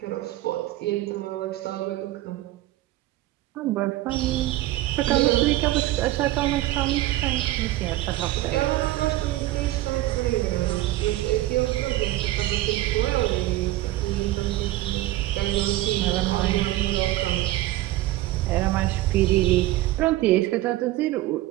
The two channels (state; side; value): quieter; left; 16.3 dB